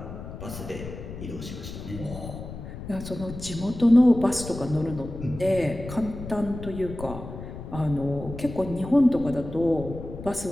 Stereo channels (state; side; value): noise; left; rumble, 10 dB below the sound